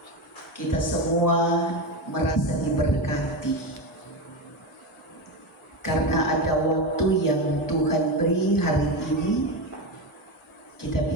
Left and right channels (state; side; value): normal; both; correlation 0.17